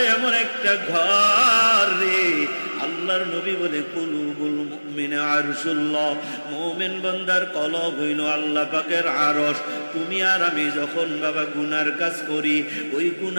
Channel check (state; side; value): inverted; both; correlation -1.00